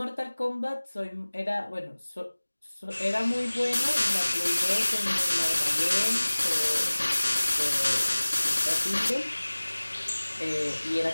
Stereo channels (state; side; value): inverted; both; correlation -1.00